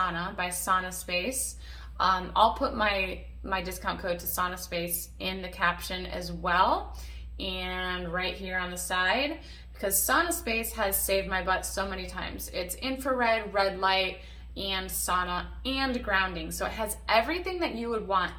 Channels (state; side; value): identical; both; correlation 1.00